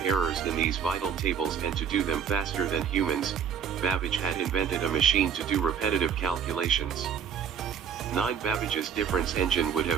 errors in these vital tables and to do them faster than humans, Babbage had invented a machine to do repetitive calculations. 9 Babbage's difference engine would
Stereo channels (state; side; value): quieter; left; 7.7 dB